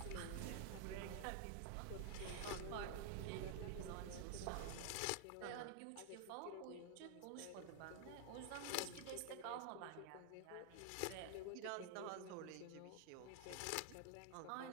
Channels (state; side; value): different; both; correlation 0.00